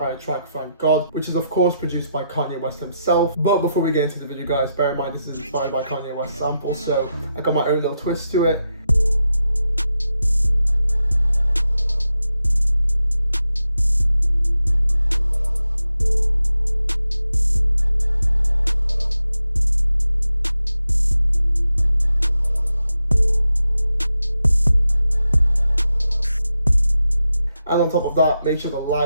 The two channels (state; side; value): inverted; both; correlation -0.86